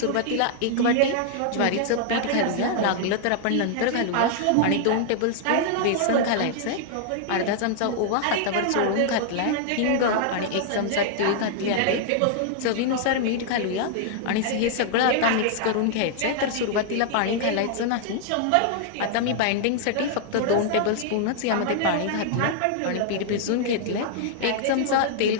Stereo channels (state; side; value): different; both; correlation -0.01